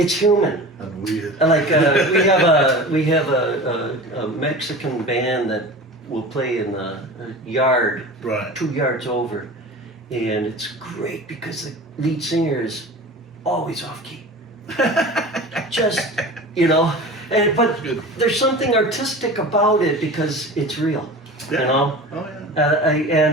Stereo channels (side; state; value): both; normal; correlation 0.35